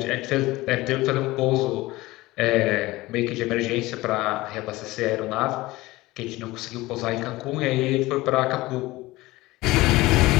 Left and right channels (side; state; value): right; quieter; 19.4 dB